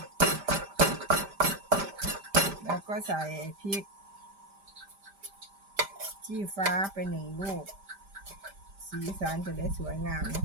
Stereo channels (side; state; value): left; late; 5.1 ms